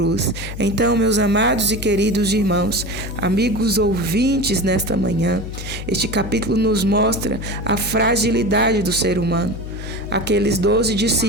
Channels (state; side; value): noise; left; hum, 9 dB below the sound